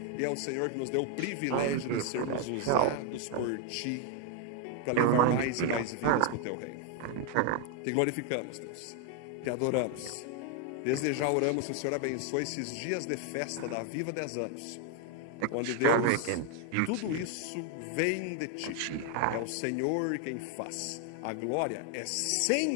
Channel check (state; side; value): different; both; correlation 0.01